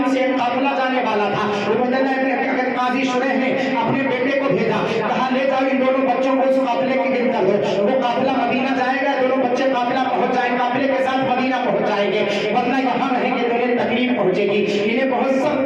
سے ایک قافلہ جانے والا تھا، عبید اللہ بن قاضی شریح نے اپنے بیٹے کو بھیجا، کہا لے جاؤ ان دونوں بچوں کو اس قافلے کے گرد کر دو، وہ قافلہ مدینہ جائے گا، دونوں بچے قافلہ پہنچ جائیں، قافلے کے ساتھ مدینہ پہنچ جائیں گے، ورنہ یہاں رہیں گے تو انہیں تکلیف پہنچے گی، انہیں بہت سخت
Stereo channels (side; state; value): both; identical; correlation 1.00